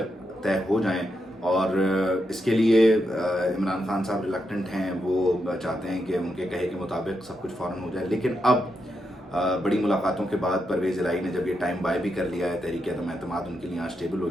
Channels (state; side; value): normal; both; correlation 0.84